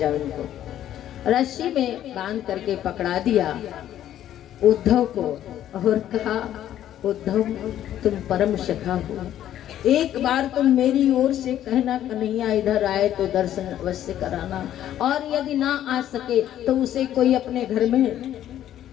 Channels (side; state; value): right; quieter; 11.6 dB